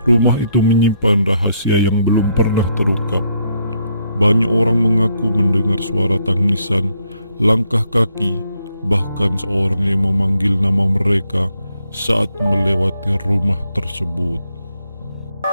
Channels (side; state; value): both; inverted; correlation -0.75